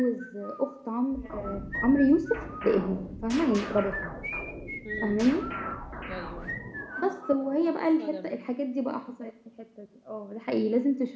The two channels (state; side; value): identical; both; correlation 1.00